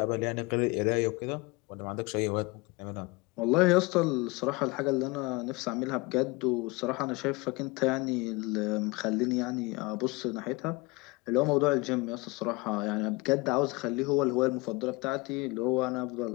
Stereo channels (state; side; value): quieter; right; 24.5 dB